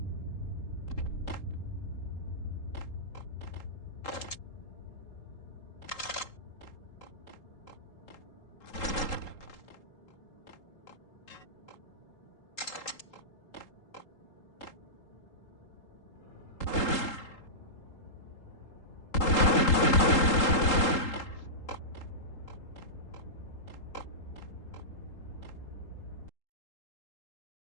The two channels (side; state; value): right; late; 3.8 ms